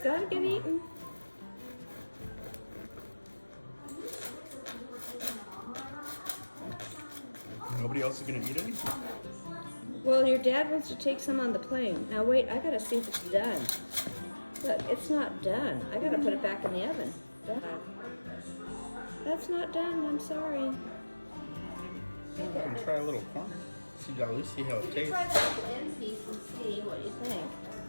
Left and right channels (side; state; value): both; inverted; correlation -1.00